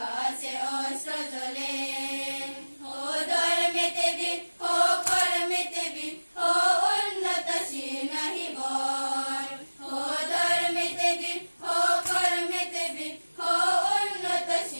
আছে অস্ত্র জ্বলে। ও ধর্মেতে বীর, ও কর্মেতে বীর, ও উন্নতশীল নাহি বর, ও ধর্মেতে বীর, ও কর্মেতে বীর, ও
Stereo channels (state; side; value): inverted; both; correlation -1.00